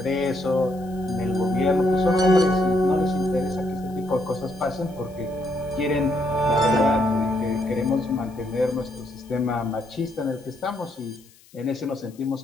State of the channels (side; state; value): left; noise; hiss, 27 dB below the sound